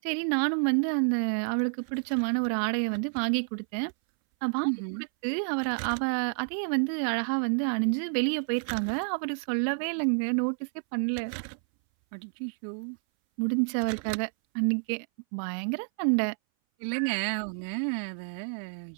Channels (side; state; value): left; silent; 58 dB below the other